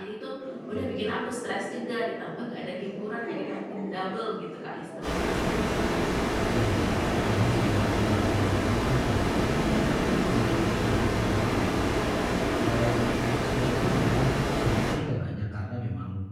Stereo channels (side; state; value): both; identical; correlation 1.00